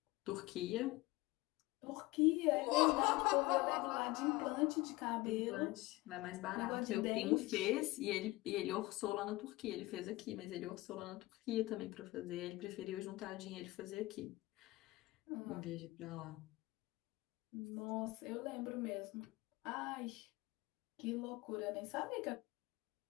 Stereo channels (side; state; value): right; quieter; 20.3 dB